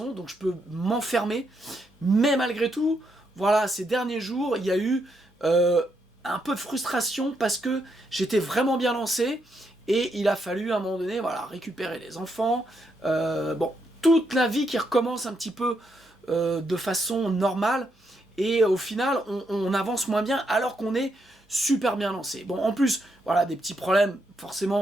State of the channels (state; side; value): normal; both; correlation 0.79